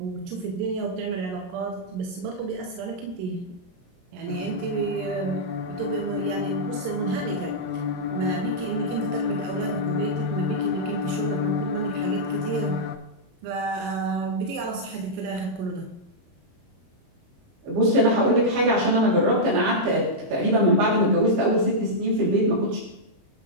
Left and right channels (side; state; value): left; late; 22 ms